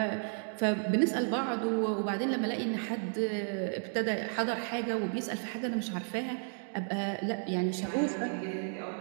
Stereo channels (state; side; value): silent; left; 56 dB below the other